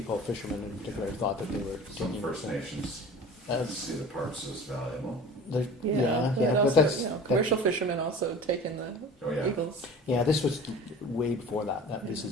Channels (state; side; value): normal; both; correlation 0.39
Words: fishermen in particular, thought that they were Some taking First Nations see the parks as valuable. but also, that's commercial fishermen also taking the eagles. Yeah, this was way before that. This